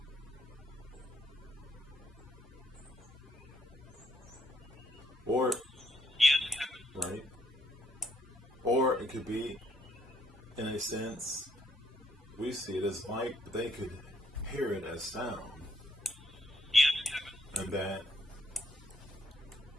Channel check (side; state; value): both; normal; correlation 0.70